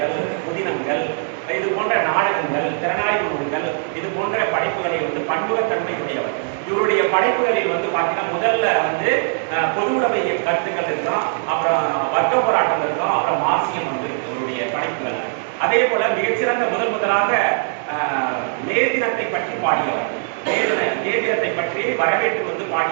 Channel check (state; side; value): silent; left; digital silence